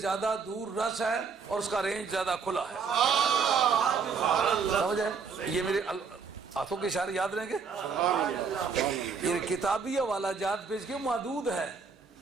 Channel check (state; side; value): quieter; left; 5.5 dB